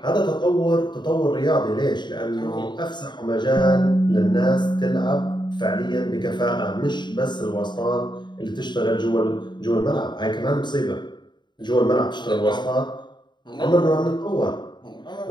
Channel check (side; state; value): right; late; 0.22 ms